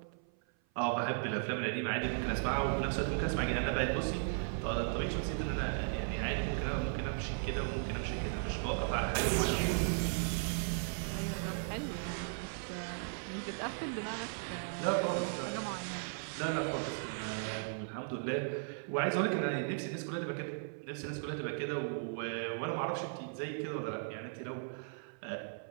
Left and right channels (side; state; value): left; silent; 53 dB below the other